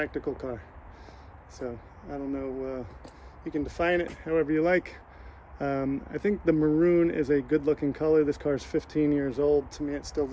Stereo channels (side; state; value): both; identical; correlation 1.00